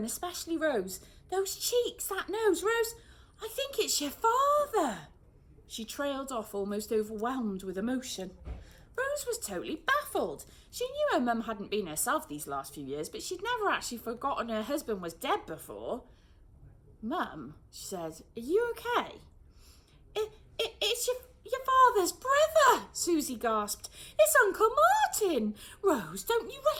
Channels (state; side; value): identical; both; correlation 1.00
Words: especially Rose. Those cheeks, that nose. Rose, I think it's your father. She trailed off, almost overwhelmed with emotion. Rose was totally baffled. She knew her mum hadn't been herself these last few years, but she'd never actually forgotten her husband was dead before. Mum, she said, are you okay? It's your father's brother, Susie gasped. It's Uncle Martin. Rose, don't you